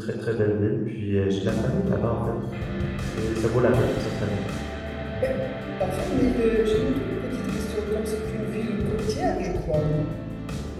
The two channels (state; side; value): identical; both; correlation 1.00